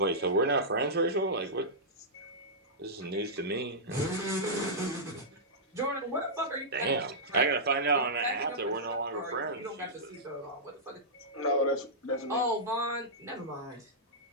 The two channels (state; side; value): normal; both; correlation -0.13